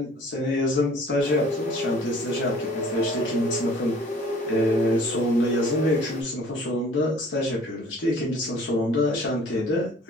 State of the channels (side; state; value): both; normal; correlation 0.51